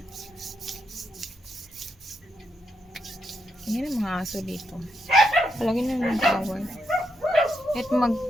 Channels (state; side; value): normal; both; correlation 0.81